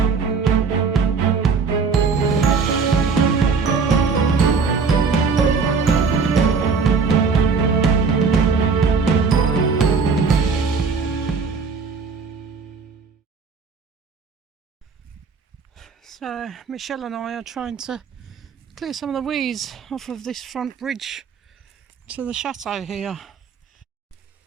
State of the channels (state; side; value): quieter; left; 5.1 dB